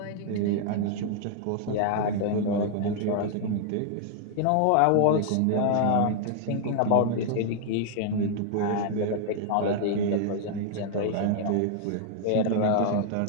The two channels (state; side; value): different; both; correlation 0.00